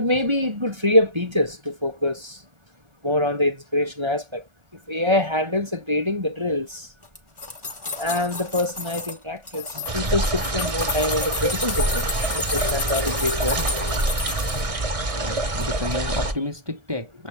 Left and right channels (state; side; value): late; left; 1.4 ms